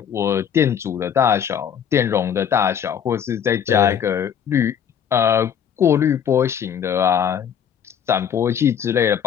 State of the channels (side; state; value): right; quieter; 8.4 dB